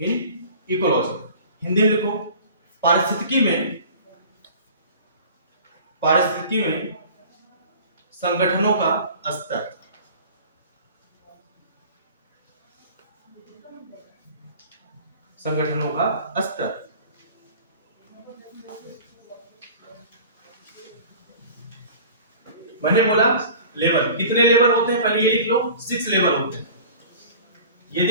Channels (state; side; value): inverted; both; correlation -0.43